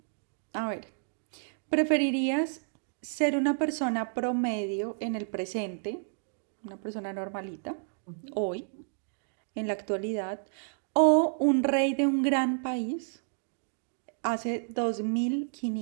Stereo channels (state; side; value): silent; left; digital silence